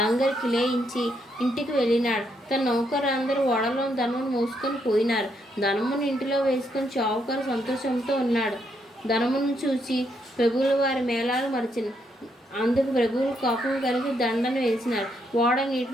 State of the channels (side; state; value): both; normal; correlation 0.76